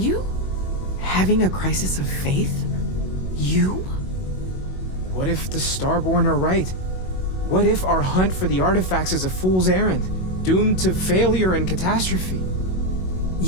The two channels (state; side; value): late; right; 22 ms